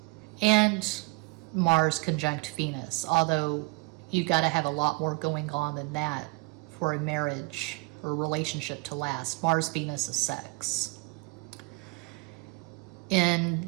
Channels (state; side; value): quieter; left; 27.0 dB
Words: and Mars conjunct Venus, although you've got to have a lot more going on than that for a marriage or relationship to last. Mars, Venus is sex. In